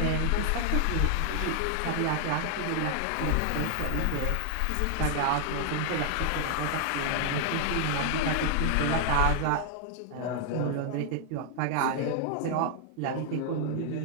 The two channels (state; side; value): different; both; correlation 0.00